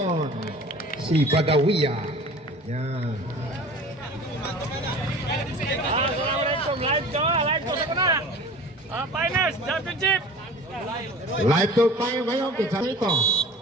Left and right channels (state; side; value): normal; both; correlation 0.42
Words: Si Badawia. Yan. Assalamualaikum. Live ko sa kana. Finals championship. Live to tayo ngayon. Pinsa ito.